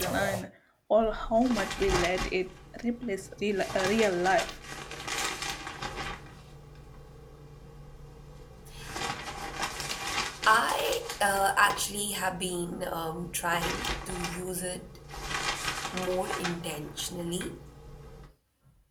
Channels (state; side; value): identical; both; correlation 1.00